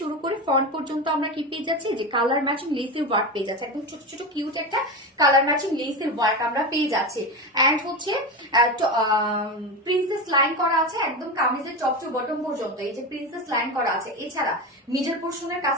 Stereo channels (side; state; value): both; normal; correlation 0.20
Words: শুরু করে ফ্রন্ট পর্যন্ত আমরা কি পেয়ে যাচ্ছি যে কালার ম্যাচিং লেসের ওয়ার্ক পেয়ে যাচ্ছে, একদম ছোট ছোট কিউট একটা কালার ম্যাচিং লেসের ওয়ার্ক আমরা পেয়ে যাচ্ছি। এন্ড হচ্ছে প্রিন্সেস লাইন করা আছে একদম কামিজের টপ টু বটম পর্যন্ত, এই যে প্রিন্সেস লাইন করা আছে। এছাড়া মিডল পোর্শনের